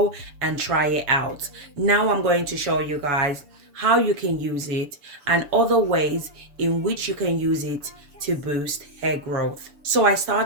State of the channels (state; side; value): late; left; 7.0 ms